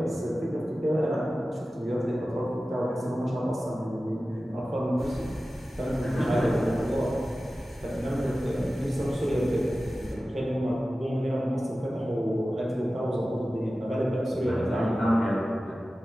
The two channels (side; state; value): both; normal; correlation 0.95